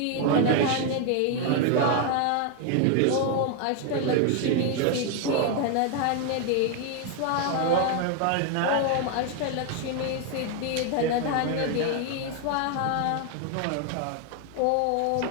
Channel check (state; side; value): different; both; correlation 0.01